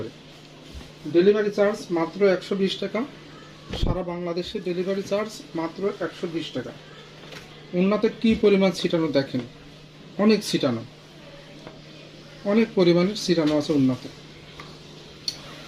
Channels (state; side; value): identical; both; correlation 1.00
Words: Delivery charge মাত্র 120 টাকা। সারা বাংলাদেশে ডেলিভারি চার্জ মাত্র 120 টাকা। ওড়নাতে কি পরিমাণ ছিটানো দেখেন, অনেক ছিটানো, অনেক পরিমাণের ছিটানো আছে ওড়নাতে।